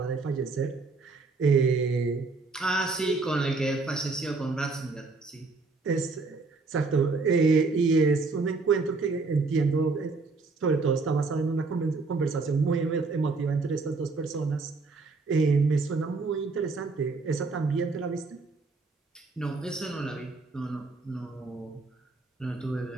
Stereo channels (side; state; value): left; quieter; 3.9 dB